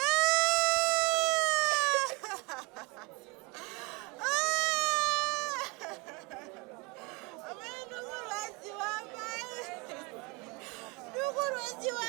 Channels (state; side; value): quieter; left; 26.5 dB